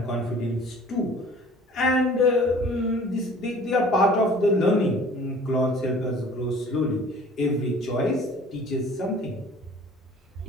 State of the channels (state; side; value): normal; both; correlation 0.49